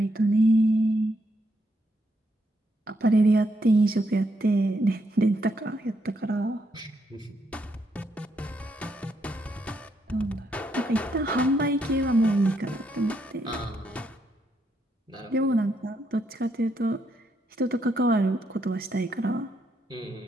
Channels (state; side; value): normal; both; correlation 0.77